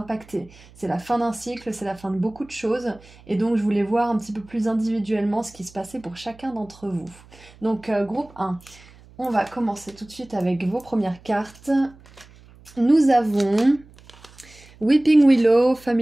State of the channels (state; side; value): noise; right; hum, 24 dB below the sound